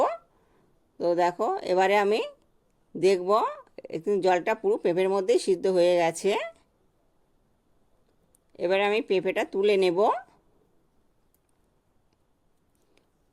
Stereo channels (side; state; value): both; identical; correlation 1.00